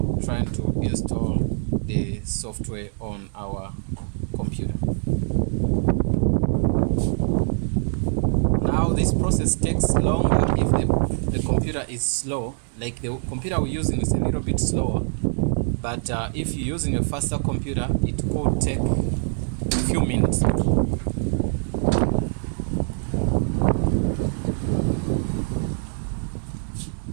trying to install the software on our computer. Now this process takes longer if the computer is slow. Like the computer we're using is a little bit slower, but if you're using a faster computer, it could take a few minutes.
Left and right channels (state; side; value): silent; left; digital silence